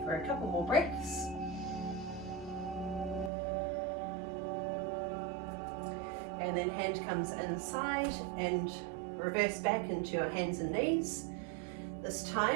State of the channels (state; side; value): drops out; left; at 3.3 s